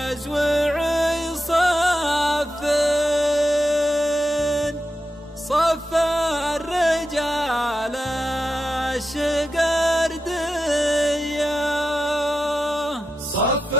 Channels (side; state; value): both; normal; correlation 0.89